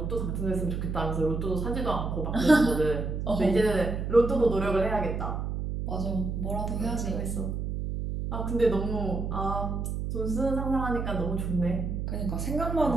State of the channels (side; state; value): right; noise; hum, 3 dB below the sound